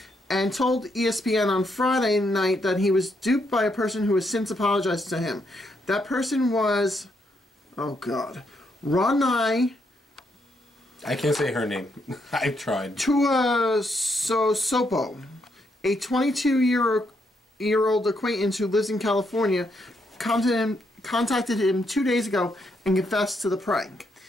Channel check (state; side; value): normal; both; correlation 0.77